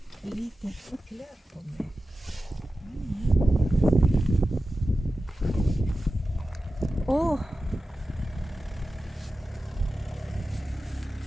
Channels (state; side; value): normal; both; correlation 0.94